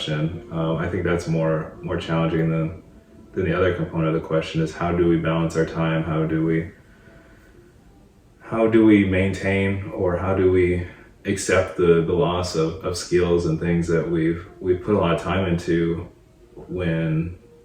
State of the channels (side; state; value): both; identical; correlation 1.00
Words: I think that's more challenging than the other component of the question, is how do we balance our time? How do we maintain, or how do we accept the loss of skills and things that we've put a lot of time into, when